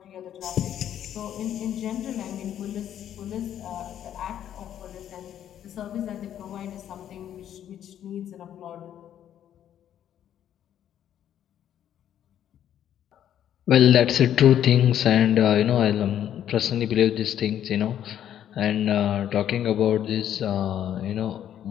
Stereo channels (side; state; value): right; quieter; 10.5 dB